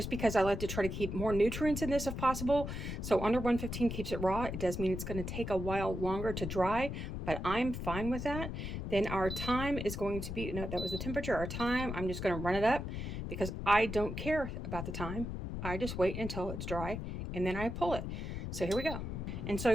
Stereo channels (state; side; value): noise; left; rumble, 5 dB below the sound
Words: because I like to try to keep more nutrients in this if possible. So under 115 keeps it raw. It does mean it's going to take a while longer to dry, but I'm fine with that. Then our time is going to be, no, that was the temperature. Our time, I'm just going to run it up because I don't care about the time. I just wait until it's dry and then I pull it. So here we go. And so